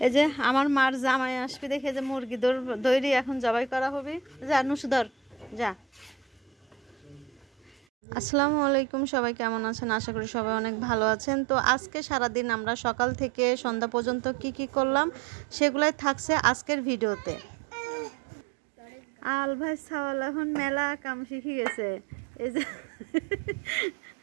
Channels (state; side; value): drops out; left; at 7.8 s